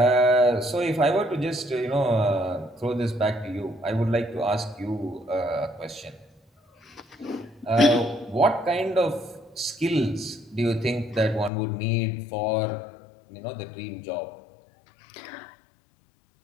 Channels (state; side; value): drops out; right; at 11.5 s